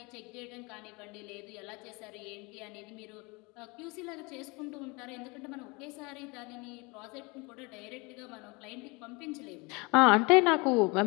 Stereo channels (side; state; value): right; quieter; 27.3 dB